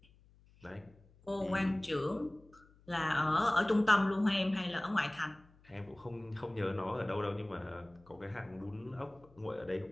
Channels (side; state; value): left; noise; hum, 28 dB below the sound